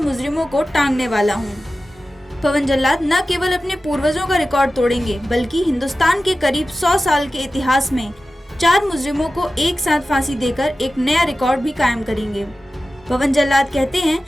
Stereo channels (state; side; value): normal; both; correlation 0.94